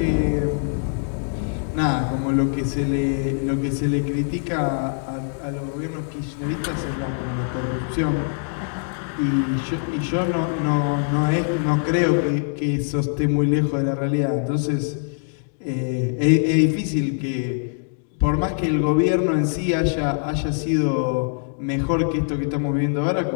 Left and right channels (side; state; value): right; silent; digital silence